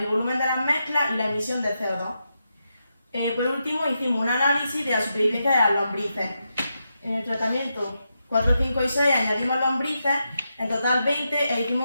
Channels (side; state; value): both; inverted; correlation -0.86